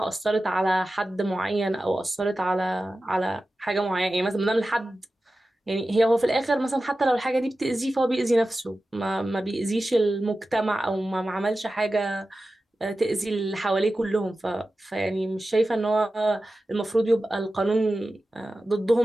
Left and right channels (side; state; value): both; normal; correlation 0.94